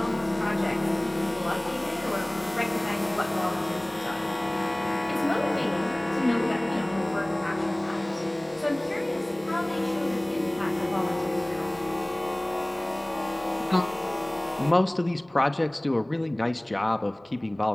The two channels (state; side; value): noise; right; hum, 28 dB below the sound